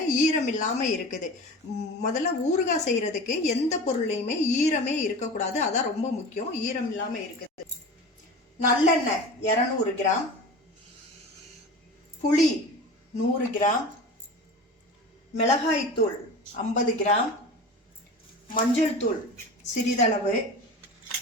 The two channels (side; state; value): both; normal; correlation 0.33